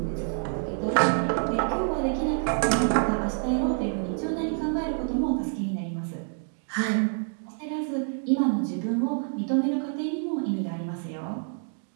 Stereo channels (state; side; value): silent; left; 60 dB below the other